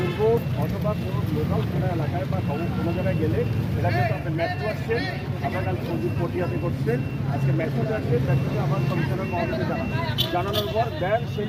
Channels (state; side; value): identical; both; correlation 1.00